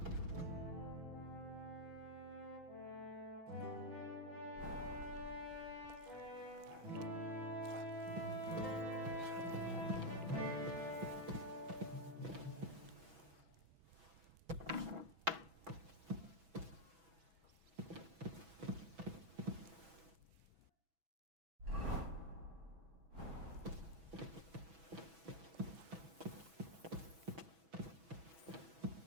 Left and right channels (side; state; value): left; late; 6.1 ms